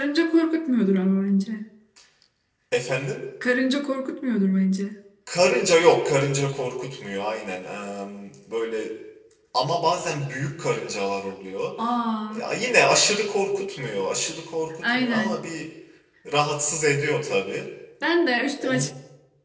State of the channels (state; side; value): identical; both; correlation 1.00